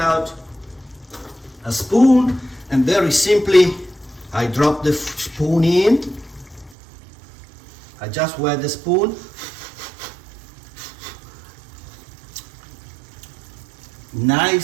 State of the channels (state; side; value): drops out; left; at 6.8 s